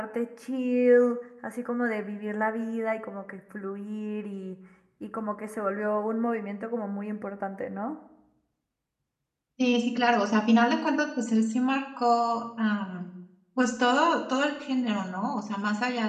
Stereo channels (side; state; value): both; identical; correlation 1.00